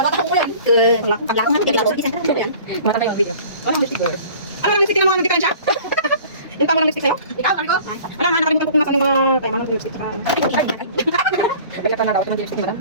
ko yan. Paglakan natin, kaya isa na yan. Mata tayo ang video. Ano ang lipstick girl? Ano ang lipstick na mga diferensya? Yung pa mo ng lipstick sa'yo? Ikaw, ano ko? Ano nga, nakalimutan ko kung nasa mga kaya mga lipstick. Balik ko na daw, ito mga lipstick na lang.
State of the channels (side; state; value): both; inverted; correlation -0.46